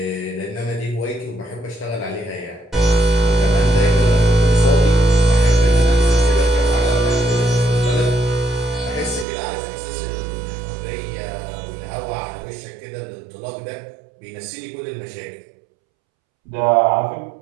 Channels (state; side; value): drops out; left; at 9.2 s